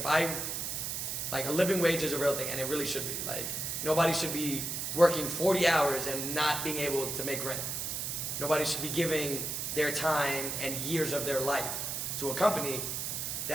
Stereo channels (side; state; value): right; noise; hiss, 3 dB below the sound